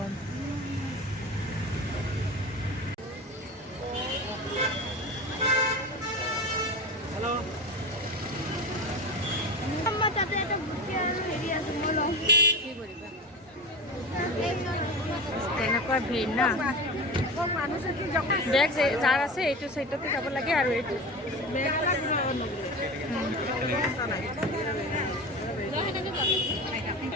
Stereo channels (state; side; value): normal; both; correlation 0.27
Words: তাতে এটা বুটি আৰু হেৰি আছে মই লওঁ। কি কৰিবা তেনেকুৱা ভিৰ না। বেগ যাৰ আছে এইটো চাইডতে যাব লাগে আৰু এইটো